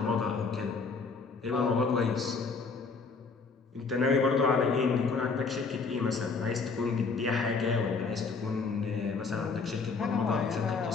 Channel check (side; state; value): right; quieter; 4.6 dB